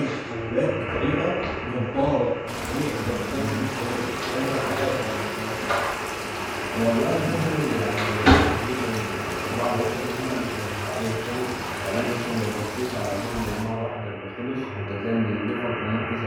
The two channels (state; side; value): identical; both; correlation 1.00